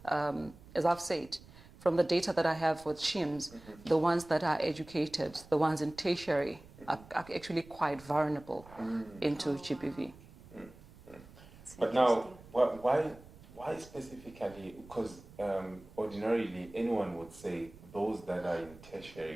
as I've said, from the data that I have with SHIMS, the ones that are educated, the ones in tertiary, are actually quite vulnerable into GBV. But now, why specifically? Because ordinarily, anyone would say those that are in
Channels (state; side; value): noise; right; rumble, 21 dB below the sound